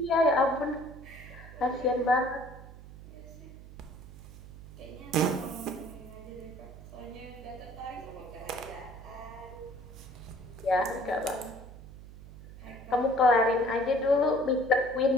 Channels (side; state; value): right; noise; hum, 16 dB below the sound